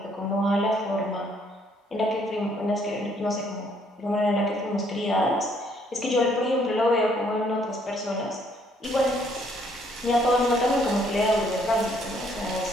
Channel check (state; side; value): normal; both; correlation 0.66